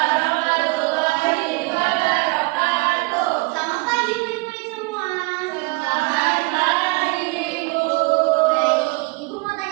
wabarakatuh. Selamat pagi murid-murid semua. Selamat pagi, Ibu. Baik, Ibu mau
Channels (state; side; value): quieter; left; 26.5 dB